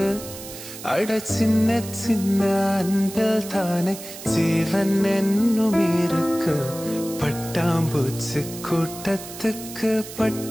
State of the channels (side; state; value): right; noise; hiss, 13 dB below the sound